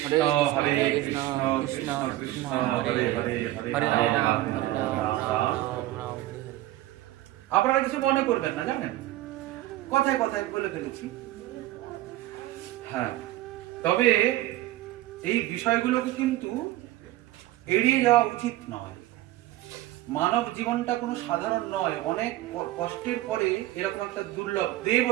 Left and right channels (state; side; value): quieter; left; 16.0 dB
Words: হরে কৃষ্ণ কৃষ্ণ কৃষ্ণ হরে হরে, হরে রাম হরে রাম। আপনারা কিছু মনে করবেন না, জানেন কথায় কথায় বলে ফেলেছি। হ্যাঁ, তবে এই বিষয়গুলোকে কিন্তু এড়িয়ে যাওয়া উচিত নয়। মানব জীবনটা কোনো সাধারণ নয়, অনেক কষ্টের পরে এরকম একটা দুর্লভ, দেব